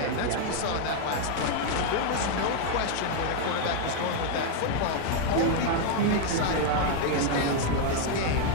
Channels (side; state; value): both; different; correlation 0.00